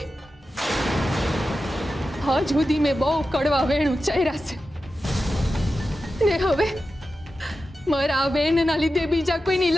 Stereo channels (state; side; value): normal; both; correlation 0.92